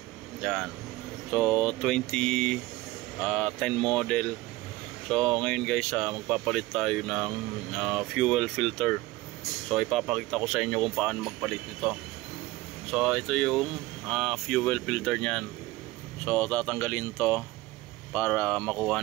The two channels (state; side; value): quieter; left; 19.1 dB